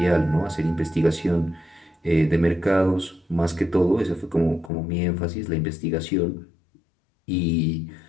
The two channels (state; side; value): drops out; right; at 4.7 s